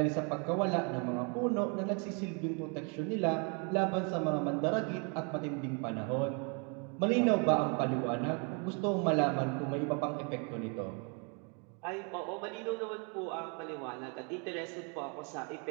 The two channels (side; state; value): left; quieter; 35.8 dB